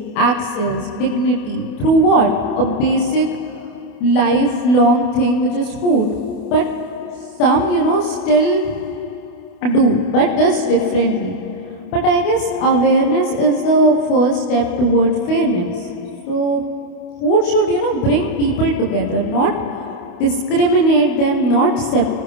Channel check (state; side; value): late; right; 28 ms